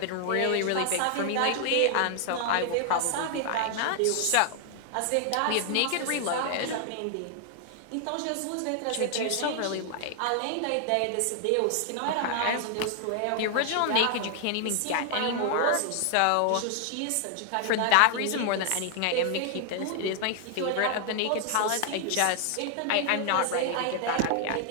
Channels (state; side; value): different; both; correlation 0.00